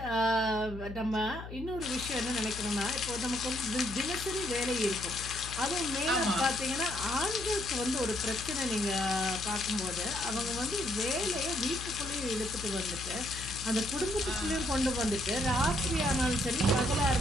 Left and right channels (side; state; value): left; noise; hum, 11 dB below the sound